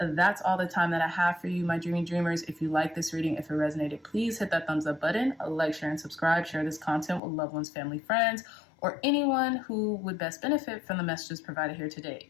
all the time that I have for you, my dreamy dreamers. If you like this reading, if it resonated, please hit that thumbs up button, like, share, and subscribe. Share this content with loved ones, family, friends, or anyone who would best benefit from the messages provided here today.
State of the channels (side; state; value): right; drops out; at 7.2 s